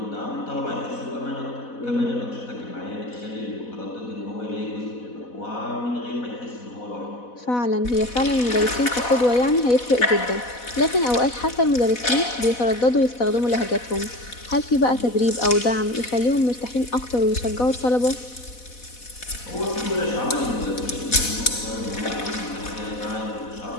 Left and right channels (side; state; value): right; late; 4.1 ms